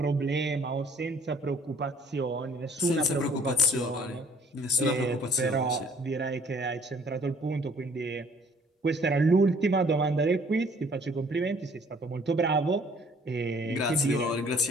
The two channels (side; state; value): both; normal; correlation 0.57